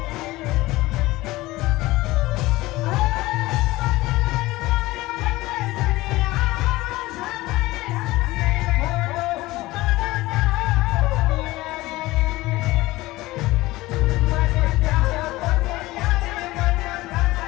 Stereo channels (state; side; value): quieter; right; 18.9 dB